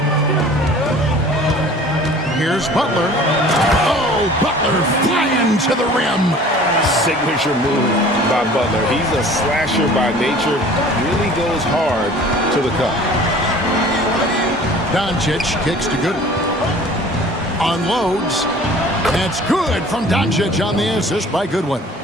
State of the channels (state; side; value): normal; both; correlation 0.47